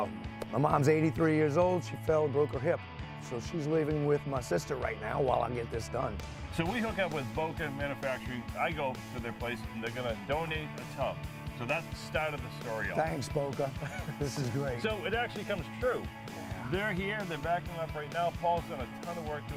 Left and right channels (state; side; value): identical; both; correlation 1.00